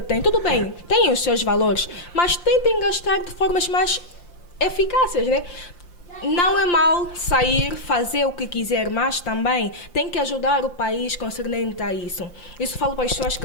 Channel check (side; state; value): right; late; 5.7 ms